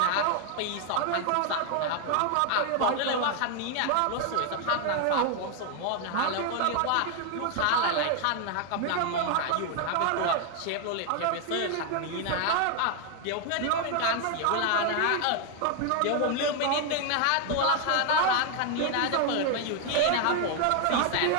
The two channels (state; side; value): different; both; correlation 0.01